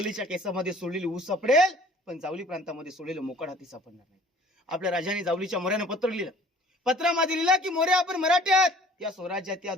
केसामध्ये सोडलेली ऊस सापडेल, पण जावली प्रांतामध्ये सोडलेलं मोकाट हाती सापडणार नाही. आपल्या राजाने जावलीच्या मोऱ्यानं पत्र लिहिलं. पत्रामध्ये लिहिलं की मोरे आपण मराठी आहात, या स्वराज्यात या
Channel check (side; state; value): both; normal; correlation 0.51